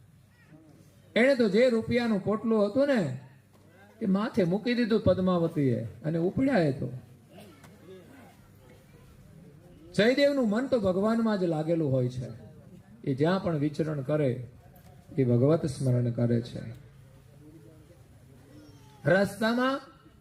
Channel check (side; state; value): both; identical; correlation 1.00